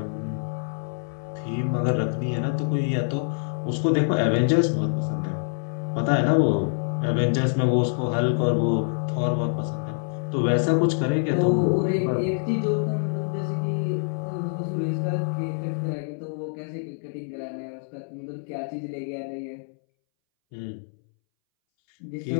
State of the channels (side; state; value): right; silent; 61 dB below the other